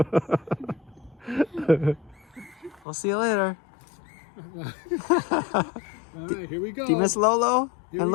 with me? We'll see you later. All right, here we go. Do you miss Lolo Here and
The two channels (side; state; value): right; drops out; at 2.9 s